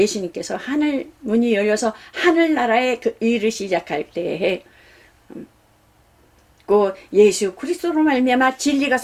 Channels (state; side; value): identical; both; correlation 1.00